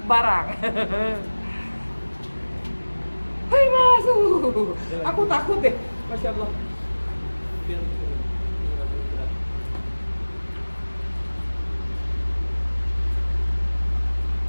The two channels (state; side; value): inverted; both; correlation -1.00